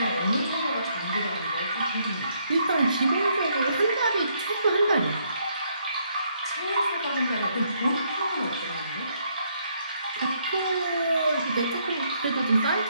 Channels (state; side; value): inverted; both; correlation -0.72